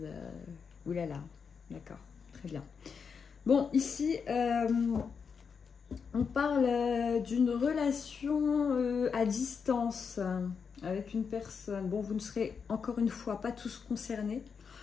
Oulala. D'accord. Très bien. Bon, ici, on parle d'une relation à distance avec une personne. Bon, vous ne serez encore une fois pas tous concernés.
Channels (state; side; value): quieter; right; 6.1 dB